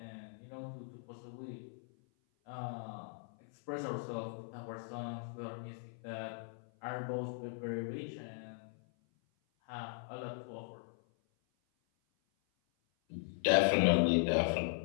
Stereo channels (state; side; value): silent; right; 52 dB below the other